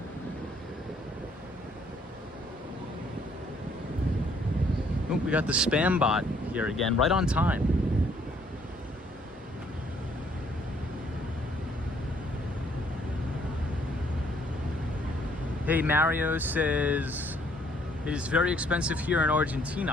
Oh, we got the spam bot here again, right on time. Hey, Mario says, it is very expensive here in Argentina.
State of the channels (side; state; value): both; normal; correlation 0.65